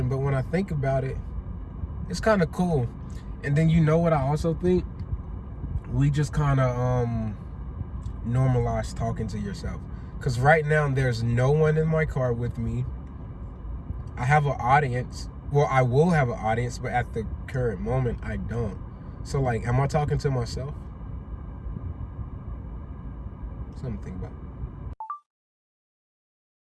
But when I think about it, it's kind of cool. And then you know what I also think? We just kind of normalize talking to yourself. Because right now there's no one in my car with me. I have an audience. Well, I will have an audience, but at the current moment, I don't. So like, am I talking to myself? Something to think about.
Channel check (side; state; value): both; identical; correlation 1.00